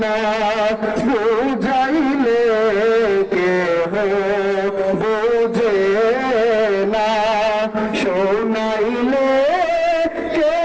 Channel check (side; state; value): both; identical; correlation 1.00